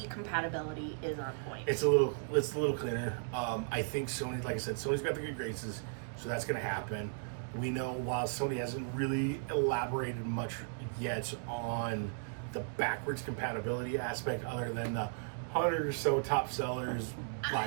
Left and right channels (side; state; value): left; silent; digital silence